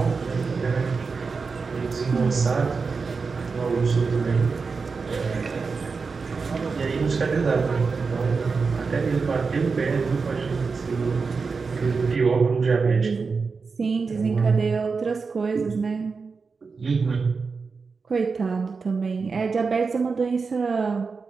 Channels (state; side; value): quieter; left; 4.8 dB